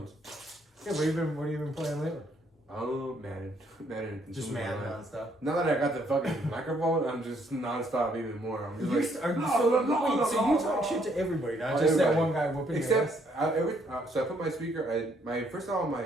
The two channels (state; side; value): normal; both; correlation 0.69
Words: Yeah, what have you been playing lately? Oh, Madden. Just Madden nonstop. Now that I got the fucking microphone, I'm just nonstop even more. I'm just So you talk shit to everybody, not just that one guy whooping your ass? Except, so I put my speaker. First of all,